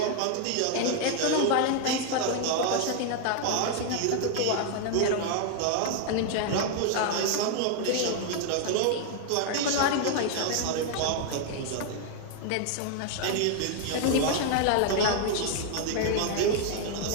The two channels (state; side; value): different; both; correlation 0.00